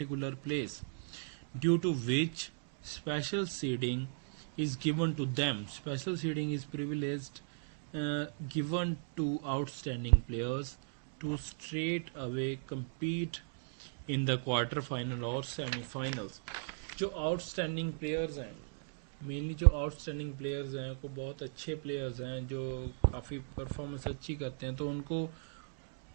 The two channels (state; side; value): silent; left; digital silence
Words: place due to which special seeding is given to them. Special seeding is privileged given to outstanding players to straight away compete in the quarter final or semi-finals. जो outstanding players हैं, मेनली जो outstanding players हैं, को बहुत अच्छे प्लेयर्स हैं जो काफ़ी परफॉर्मेंस अच्छी करते हैं, तो उनको